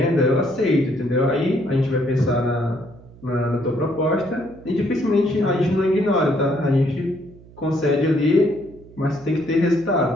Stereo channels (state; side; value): noise; right; hum, 22 dB below the sound